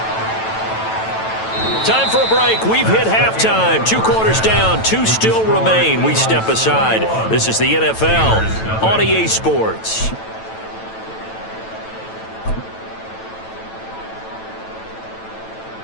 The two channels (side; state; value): right; late; 9.1 ms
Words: Time for a break. We've hit halftime. 2 quarters down. 2 still remain. We step aside. This is the NFL on EA Sports.